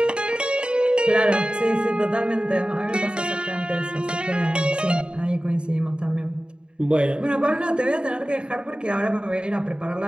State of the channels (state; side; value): late; left; 0.052 ms